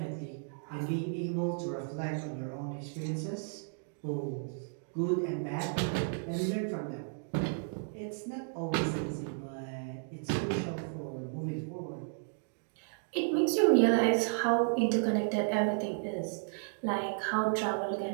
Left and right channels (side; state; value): left; silent; digital silence